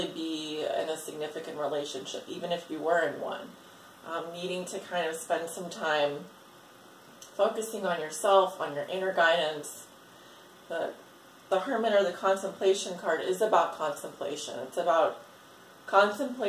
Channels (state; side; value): identical; both; correlation 1.00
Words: be in a significant relationship, even if you were in one. Needing to kind of spend some time focusing on yourself, on your inner guidance. The Hermit, or the Contemplation card, is about contemplation. It's about